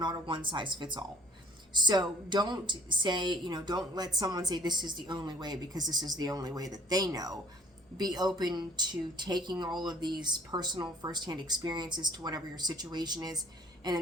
a one size fits all. So don't say, don't let someone say this is the only way because this is the only way that they know. Be open to taking all of these personal firsthand experiences to whatever your situation is, and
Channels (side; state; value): both; normal; correlation 0.54